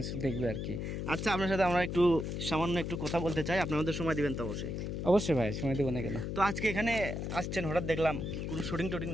দেখবে আর কি। আচ্ছা, আপনার সাথে আমরা সামান্য একটু কথা বলতে চাই, আপনি আমাদের সময় দিবেন তো? অবশ্যই অবশ্যই ভাই, সময় দেবো না কেন। তো আজকে এখানে আসছেন হঠাৎ দেখলাম, কোনো শুটিং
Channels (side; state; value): left; noise; hum, 3 dB below the sound